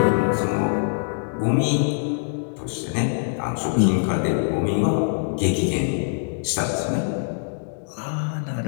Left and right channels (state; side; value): silent; right; digital silence